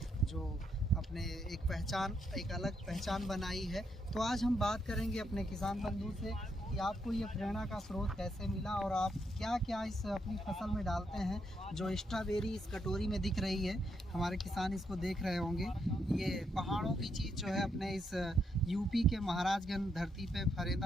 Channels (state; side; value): normal; both; correlation 0.78